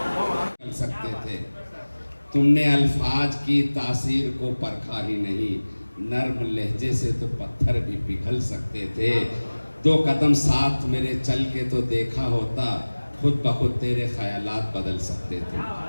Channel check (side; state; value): both; inverted; correlation -1.00